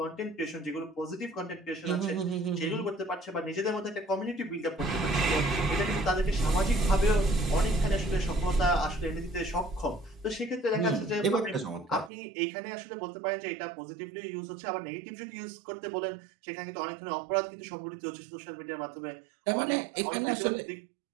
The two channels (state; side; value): drops out; left; at 12.1 s